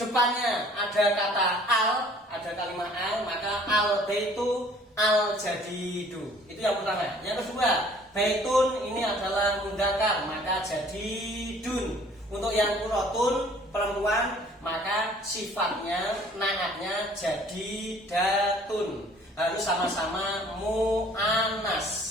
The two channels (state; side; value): normal; both; correlation 0.55